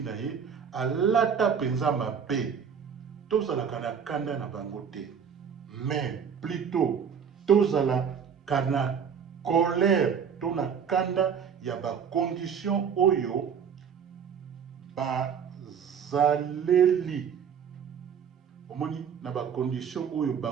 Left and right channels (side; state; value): left; quieter; 7.2 dB